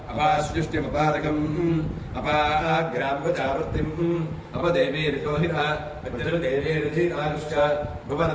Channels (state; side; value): identical; both; correlation 1.00